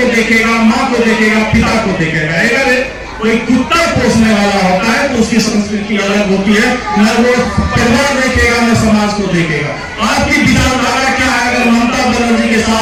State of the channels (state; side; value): identical; both; correlation 1.00